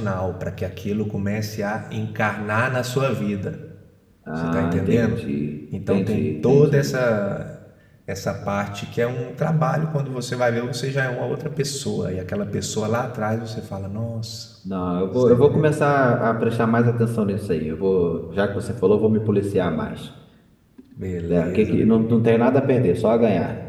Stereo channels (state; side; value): identical; both; correlation 1.00